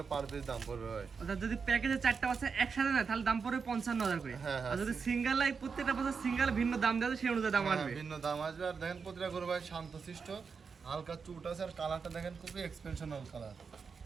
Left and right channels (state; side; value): quieter; left; 5.5 dB